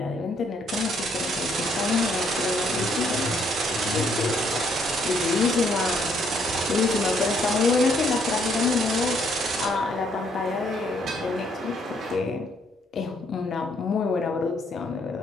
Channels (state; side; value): normal; both; correlation 0.69